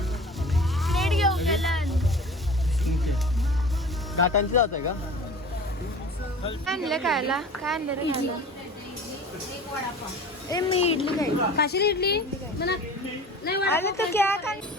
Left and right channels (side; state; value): both; normal; correlation 0.40